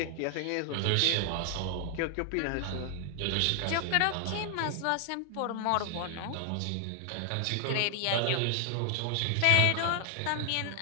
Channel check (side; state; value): both; different; correlation 0.00